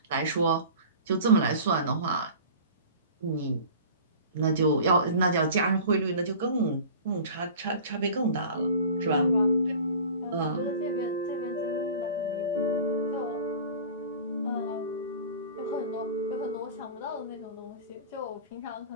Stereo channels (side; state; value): both; inverted; correlation -0.41